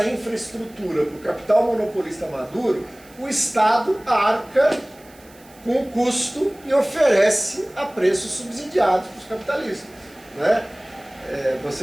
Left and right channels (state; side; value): noise; right; hiss, 26 dB below the sound